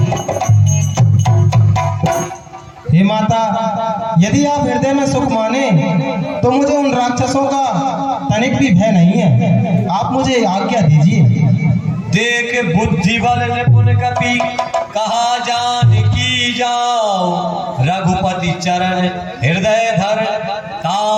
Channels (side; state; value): both; identical; correlation 1.00